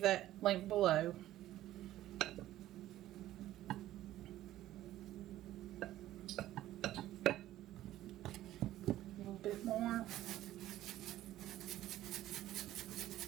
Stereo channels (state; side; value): quieter; left; 14.1 dB